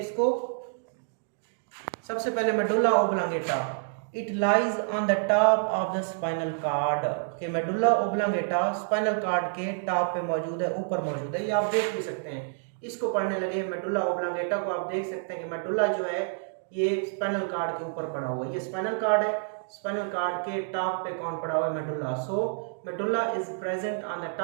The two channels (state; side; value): silent; left; digital silence